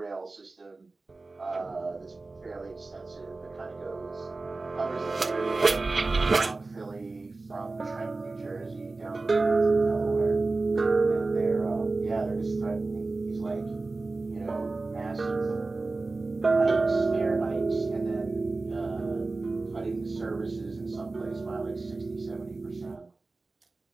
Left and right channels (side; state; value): left; quieter; 3.5 dB